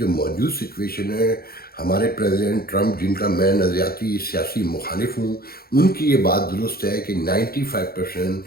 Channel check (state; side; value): late; right; 0.44 ms